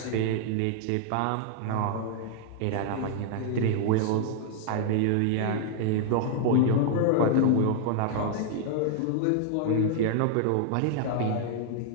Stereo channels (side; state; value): both; different; correlation -0.01